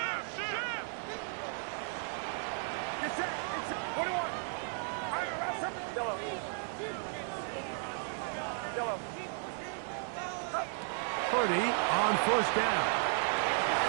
Get set. 21. Yellow. Purdy on first down.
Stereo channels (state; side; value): silent; left; 55 dB below the other